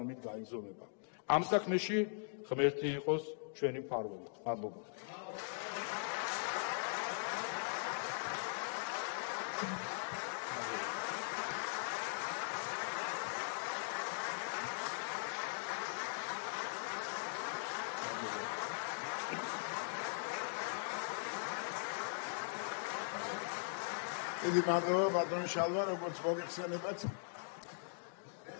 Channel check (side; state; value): right; silent; digital silence